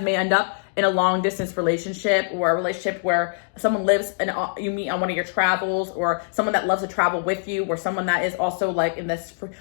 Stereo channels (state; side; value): silent; right; digital silence